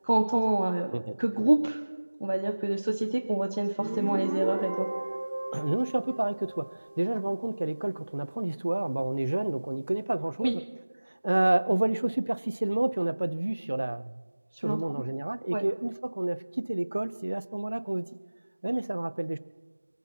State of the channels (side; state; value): both; inverted; correlation -1.00